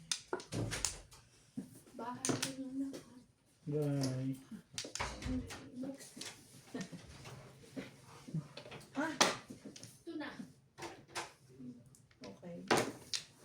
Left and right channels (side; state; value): both; identical; correlation 1.00